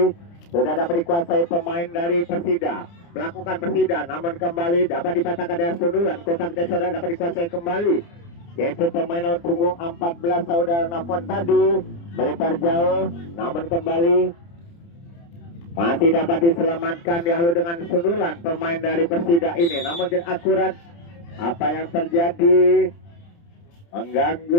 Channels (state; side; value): late; right; 29 ms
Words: Sudah dapat dikuasai pemain dari Persida, melakukan Persida, namun kembali dapat dipatahkan dengan sundulan. Kotak saudara dapat dikuasai kembali, yaitu pemain nomor punggung 14 saudara Nafon tadi melebar jauh, namun kembali masih dapat diselamatkan dihalu dengan sundulan pemain dari Persida ini, namun tidak akurat. Apa yang terjadi